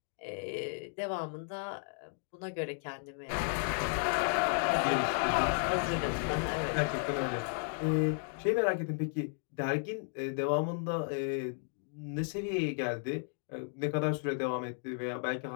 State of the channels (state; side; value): silent; right; 55 dB below the other